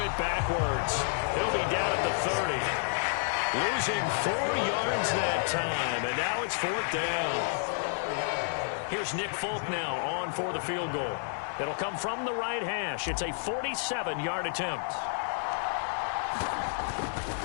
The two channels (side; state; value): right; silent; digital silence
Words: backwards. He'll be down at the 30. Losing 4 yards that time, and now it's 4th down. Here's Nick Folk now on for the field goal. It'll come from the right hash. It's a 47-yard attempt.